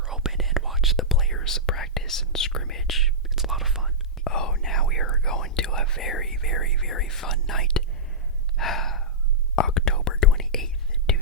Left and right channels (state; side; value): normal; both; correlation -0.14